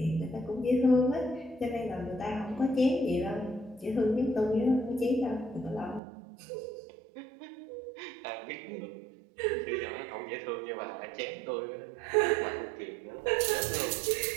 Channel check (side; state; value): left; drops out; at 6.0 s